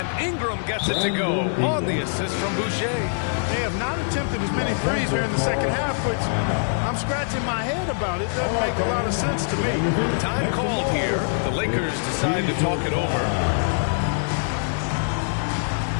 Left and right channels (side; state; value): right; silent; digital silence